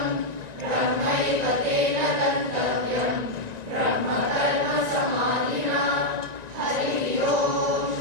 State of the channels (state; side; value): late; left; 1.9 ms